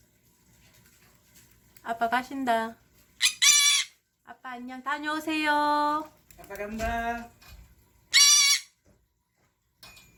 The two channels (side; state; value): both; identical; correlation 1.00